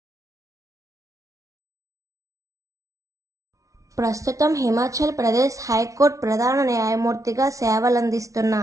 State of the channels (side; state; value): left; late; 0.16 ms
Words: ప్రస్తుతం హిమాచల్ ప్రదేశ్ హైకోర్టు ప్రధాన న్యాయమూర్తిగా సేవలందిస్తున్న